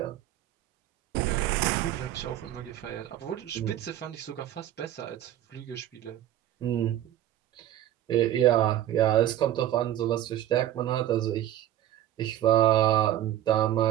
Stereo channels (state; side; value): quieter; left; 12.4 dB